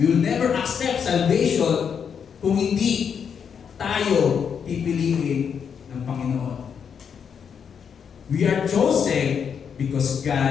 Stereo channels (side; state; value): right; quieter; 7.2 dB